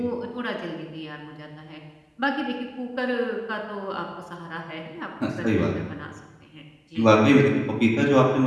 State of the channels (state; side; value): identical; both; correlation 1.00